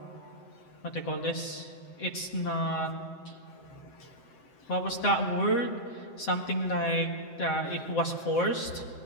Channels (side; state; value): right; late; 7.8 ms